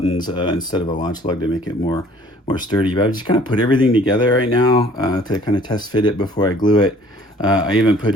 instead of a launch lug to make it more sturdy. But I've just kind of put everything together right now to kind of test fit it before I glue it. I even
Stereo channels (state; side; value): normal; both; correlation 0.55